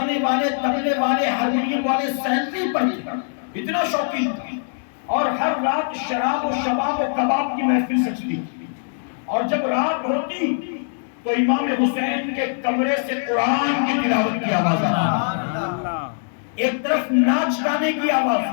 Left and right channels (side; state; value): right; silent; digital silence